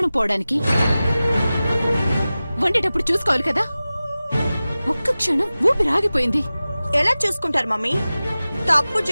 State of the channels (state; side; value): inverted; both; correlation -0.96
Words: పోవడానికి? వండేటప్పుడు చూసుకోవాలి కదా. ఒక్క క్షణం ఊపిరాగిపోయింది. ఎలా చూసుకుంటారు మమ్మీ? తప్పు